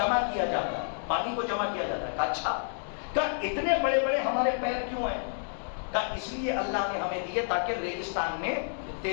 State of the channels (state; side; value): silent; right; digital silence